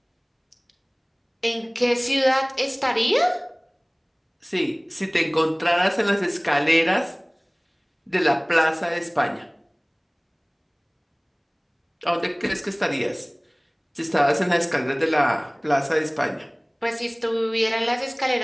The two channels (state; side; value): identical; both; correlation 1.00